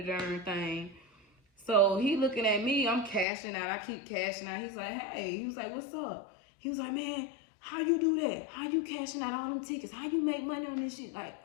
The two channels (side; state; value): right; drops out; at 3.2 s